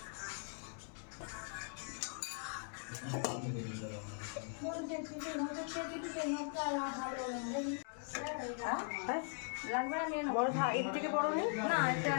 বড় এর থেকে বড় নেই না, এটা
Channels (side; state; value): right; silent; 51 dB below the other